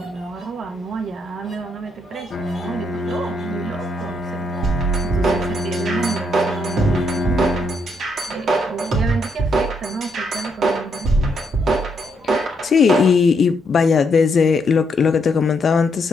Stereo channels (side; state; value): both; normal; correlation 0.76